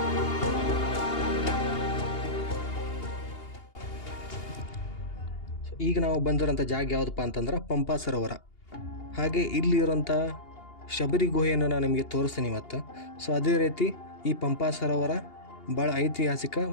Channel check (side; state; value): right; late; 2.8 ms